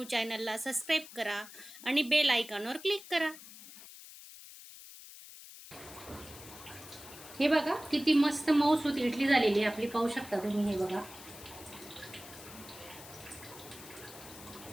चॅनलला सबस्क्राईब करा आणि बेल आयकॉनवर क्लिक करा। हे बघा किती मस्त मऊसूत इडली झालेली आहे आपली, पाहू शकता तुम्ही। हे बघा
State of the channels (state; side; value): noise; left; hiss, 16 dB below the sound